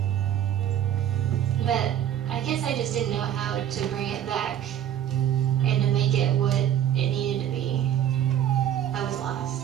But I guess I just didn't know how to bring it back and to make it what it needed to be. I was lost.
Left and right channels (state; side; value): quieter; left; 10.5 dB